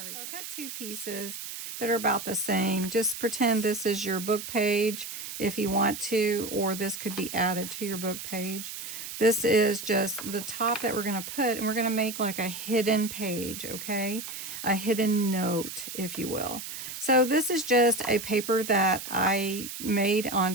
So I got two pieces that are about the same. Just pretend this is your book page if you want to, or this could be added to your book page. This is just the top that we're going to put, and we're going to make like a hidden page, okay? A hidden note, if you will. So this is just a paper that I made on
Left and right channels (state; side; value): noise; right; hiss, 8 dB below the sound